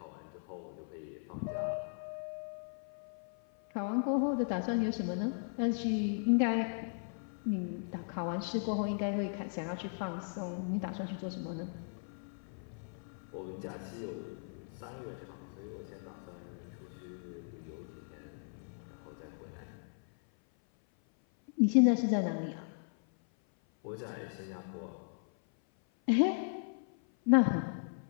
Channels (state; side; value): silent; right; 53 dB below the other